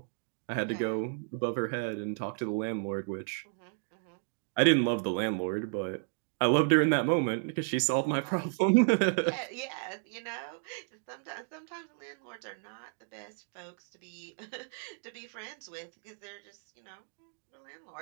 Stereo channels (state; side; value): silent; left; 55 dB below the other